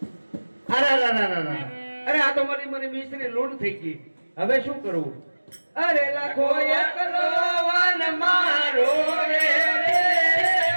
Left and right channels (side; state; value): both; inverted; correlation -1.00